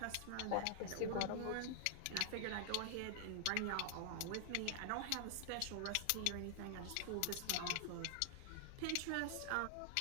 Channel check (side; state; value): both; different; correlation 0.00